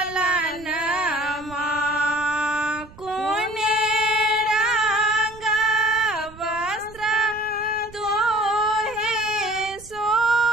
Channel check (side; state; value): right; noise; rumble, 21 dB below the sound